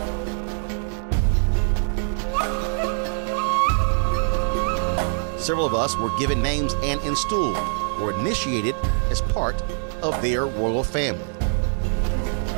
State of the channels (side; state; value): left; silent; digital silence